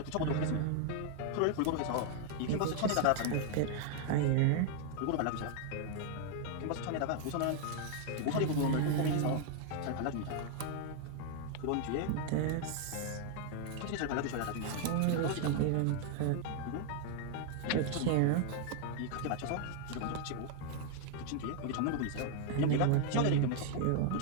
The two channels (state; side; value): different; both; correlation 0.00